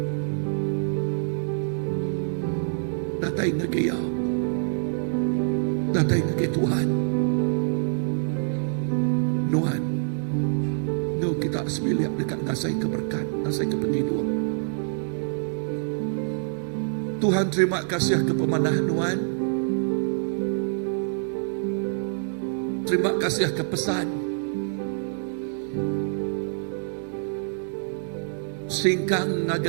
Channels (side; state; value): left; silent; digital silence